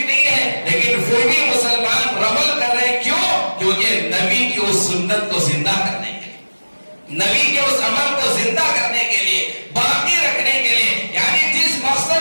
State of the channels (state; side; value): inverted; both; correlation -1.00